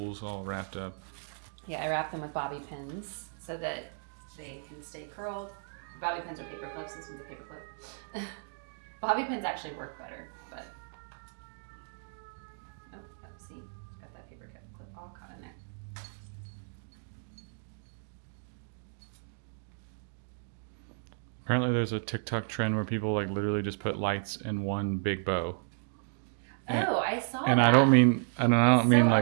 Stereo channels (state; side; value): silent; left; digital silence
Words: all wrapped up. Yeah, I wrap them with bobby pins so that they can stay curled. Bobby pins are paper clips. This one's a paper clip. Bobby pins actually work better, but see, got that paper clip all caught in there. Apparently, there's a TikTok trend where people like literally just put lights in one big bow. Oh, I saw And that. I don't mean so